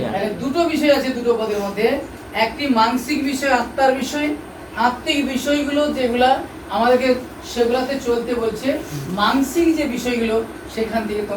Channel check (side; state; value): both; identical; correlation 1.00